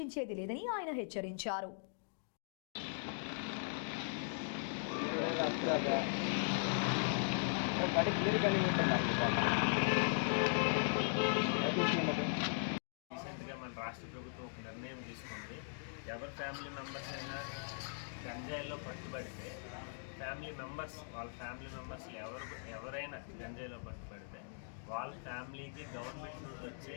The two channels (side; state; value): right; silent; digital silence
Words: లేదని ఆయన హెచ్చరించారు. రీసెంట్గా మన రాష్ట్ర ప్రభుత్వం ఒక నిర్ణయం తీసుకుంది. ఎవరి ఫ్యామిలీ మెంబర్స్ అయినా గంజాయిలో పట్టుబడితే వాళ్ళ ఫ్యామిలీ మెంబర్స్ ఎవరైనా గంజాయిలో పట్టుబడితే వాళ్ళ ఫ్యామిలీకి గవర్నమెంట్ నుండి వచ్చే